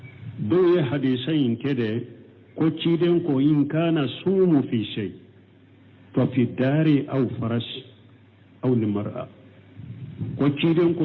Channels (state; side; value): identical; both; correlation 1.00